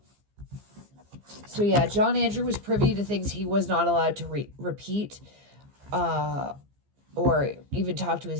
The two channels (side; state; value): left; late; 15 ms